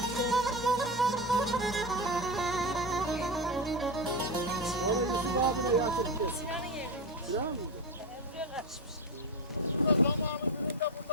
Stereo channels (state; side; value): normal; both; correlation 0.17